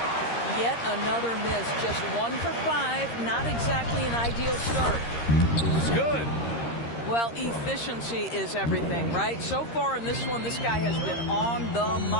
Yet another miss. Just 1 for 5. Not exactly an ideal start. It's good. Well, efficiency is everything, right? So far in this one, this guy has been on the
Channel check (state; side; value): late; right; 13 ms